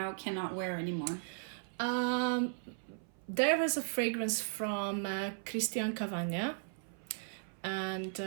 cannot wear anymore. There was a fragrance from Christian Cavagna, and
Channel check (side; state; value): left; silent; 53 dB below the other